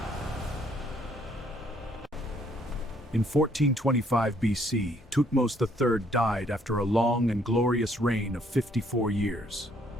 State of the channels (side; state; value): both; normal; correlation 0.66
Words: In 1425 BC, Thutmose III died after a long and glorious reign of 54 years.